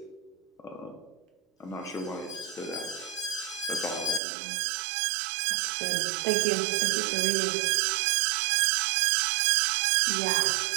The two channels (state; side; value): drops out; left; at 4.2 s